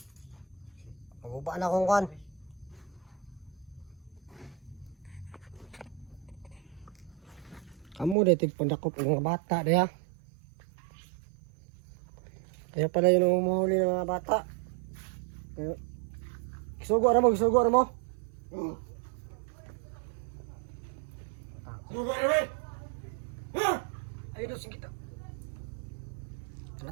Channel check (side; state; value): left; drops out; at 8.2 s